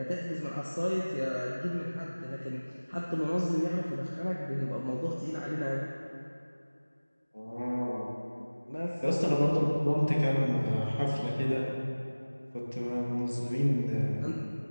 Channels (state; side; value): inverted; both; correlation -1.00